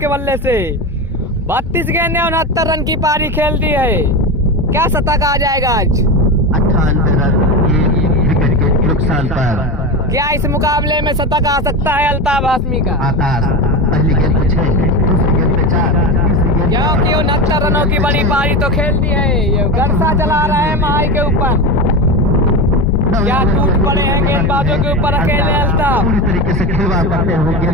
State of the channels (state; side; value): normal; both; correlation 0.21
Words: बल्ले से। 32 गेंदें 69 रन की पारी खेल दी है। क्या शतक आ जाएगा आज? 98 रन 1 विकेट के नुकसान पर। क्या इस मुकाबले में शतक आ सकता है अल्ताफ हाशमी का? आकाश पहली गेंद पे 6, दूसरी गेंद पे 4, तीसरी गेंद क्योंकि 69 रनों की बड़ी पारी तो खेल दी है। ये गरसा चला रहे हैं महाई के ऊपर। क्या टूट पड़े हैं गेंदबाजों के ऊपर अकेले अल्ताफ। पूरी तरीके से खिलवाड़ करते हुए